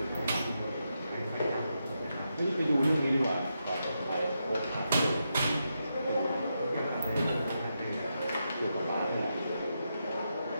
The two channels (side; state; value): both; inverted; correlation -0.85